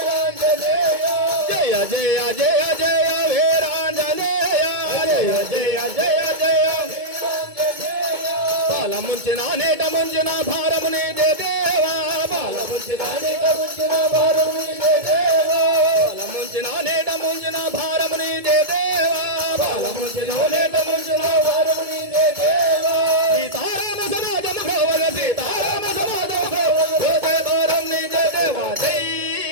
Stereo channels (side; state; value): left; late; 2.2 ms